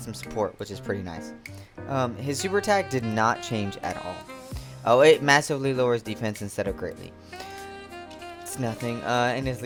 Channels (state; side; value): identical; both; correlation 1.00